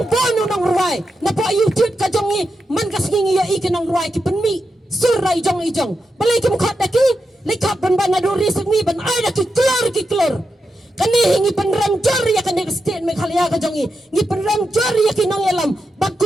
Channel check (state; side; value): normal; both; correlation 0.87